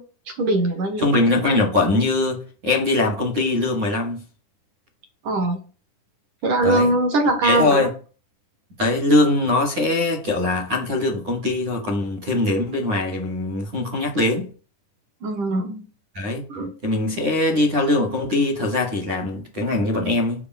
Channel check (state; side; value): late; left; 9.7 ms